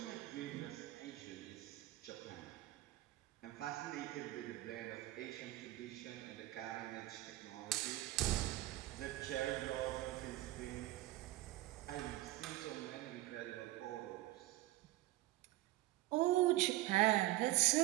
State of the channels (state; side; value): quieter; left; 17.3 dB